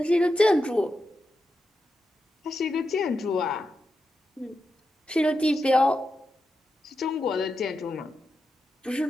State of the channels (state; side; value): normal; both; correlation 0.88